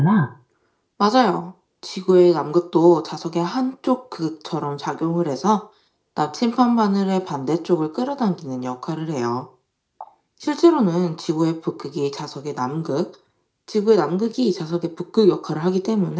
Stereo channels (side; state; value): both; identical; correlation 1.00